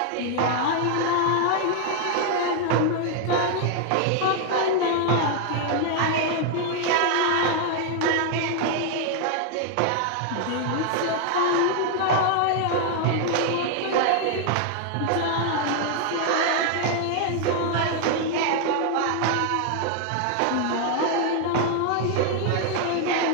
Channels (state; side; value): different; both; correlation 0.00